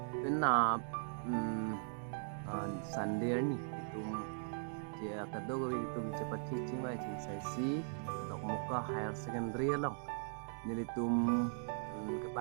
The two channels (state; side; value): silent; left; digital silence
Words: penap Sunday ni itum dia kado gawi itum cepat teaching mai cing sesi dok muka higher secondary long nili tum